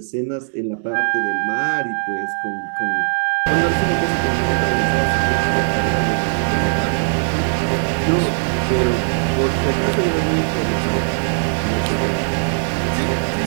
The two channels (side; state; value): left; silent; digital silence